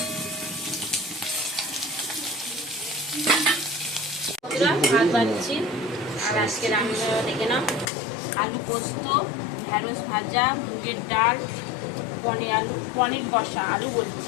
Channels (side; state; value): right; drops out; at 7.9 s